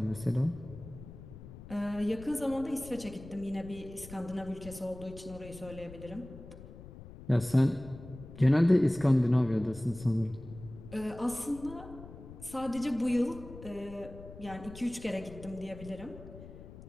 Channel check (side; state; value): left; noise; rumble, 15 dB below the sound